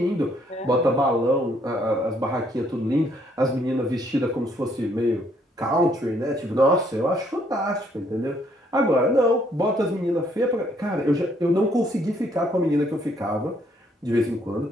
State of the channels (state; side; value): normal; both; correlation 0.68